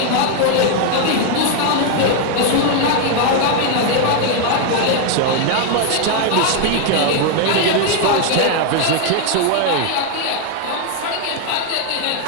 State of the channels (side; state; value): both; different; correlation 0.01